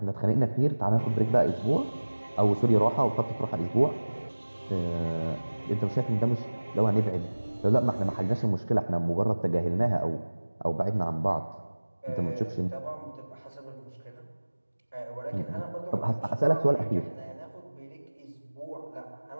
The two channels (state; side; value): inverted; both; correlation -1.00